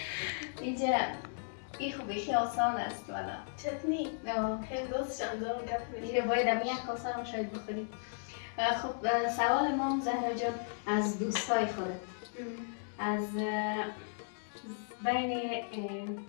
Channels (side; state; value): right; silent; 54 dB below the other